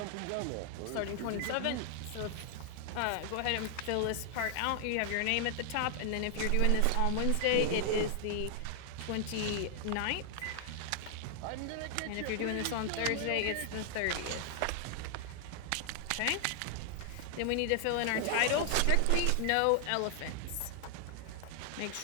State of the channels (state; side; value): different; both; correlation 0.00